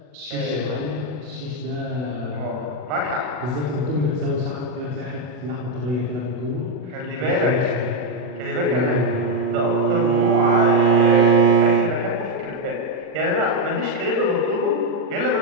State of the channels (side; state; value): left; late; 40 ms